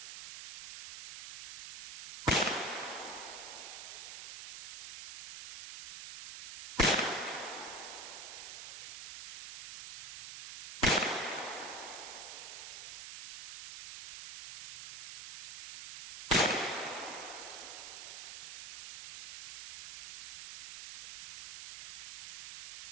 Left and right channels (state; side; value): noise; right; hiss, 9 dB below the sound